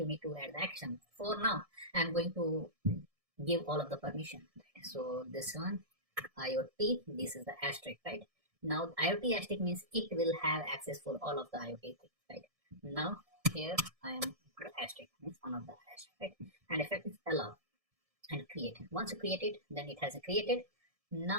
need to add the action. For now I'm going to give all of the permission, right? So this one IoT, this is the asterisk, right? Now IoT asterisk means it will have access for all of the IoT things, right? Now here I am the asterisk, means one of the asterisk, right? And effect is allow and create. Once you create it, then it has created.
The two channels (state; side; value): late; left; 1.7 ms